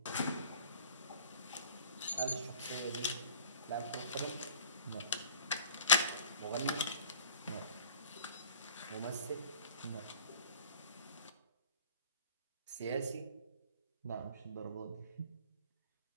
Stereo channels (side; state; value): both; inverted; correlation -0.46